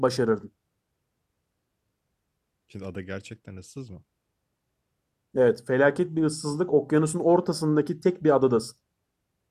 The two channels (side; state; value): both; identical; correlation 1.00